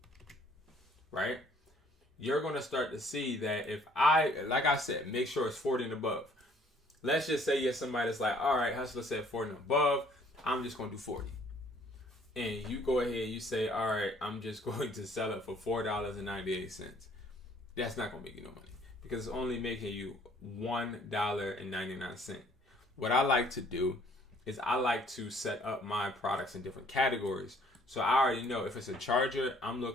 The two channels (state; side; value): normal; both; correlation 0.59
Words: right? You're going to start to see that if like I said, make sure it's 40 and above. Let's just say you're somebody that's like, all right, Hustler said 40 and above, I'm just going to do 40. And you go ahead, you say, all right, I'm just going to sell it for $4.98. That's not going to make you no money because it's only making you $1.99. What I like to do is I like to set up my products in different categories. So I already know if it's a charger, I'm